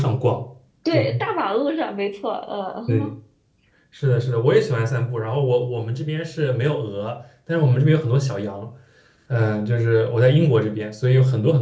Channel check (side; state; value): both; identical; correlation 1.00